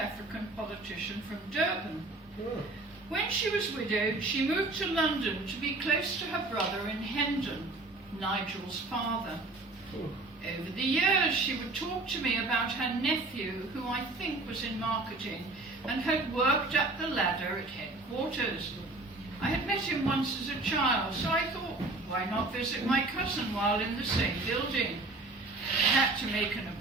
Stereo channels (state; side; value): quieter; left; 3.0 dB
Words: politician from Durban. When she was widowed, she moved to London to be close to her brother in Hendon, Nigel's father. Over the years, she would talk to me about her nephew, who I think was in marketing, and had worked up the ladder at headquarters. I had met him once as a child, so I thought, why not visit my cousin while in the same building? had to make an